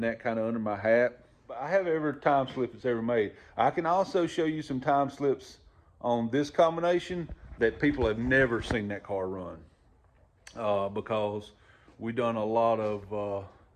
that kind of under my hat. But I have every time slip it's ever made. I can also show you some time slips on this combination that people have never seen that car run, because we've done a lot of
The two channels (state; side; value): identical; both; correlation 1.00